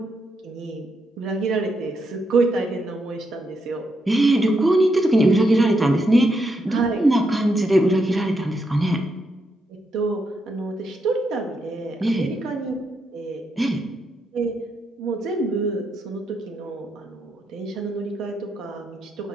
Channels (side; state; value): both; normal; correlation 0.81